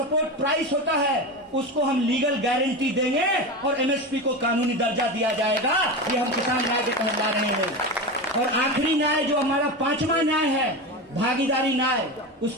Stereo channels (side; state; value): both; normal; correlation 0.22